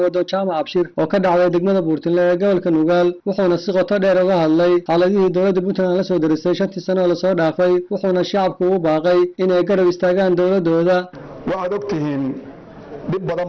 jaamac Abshir oo ka dhacday degmada Buurtile ee gobolka Nugaal wuxuuna si qoto dheer uga hadlay xaaladihii dowladda Puntland la soo darisay 5 sano la soo dhaafay wuxuuna shacabku u baaqay inay garab istaagaan dowladooda. waxaad ogtihiin dib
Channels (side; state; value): both; identical; correlation 1.00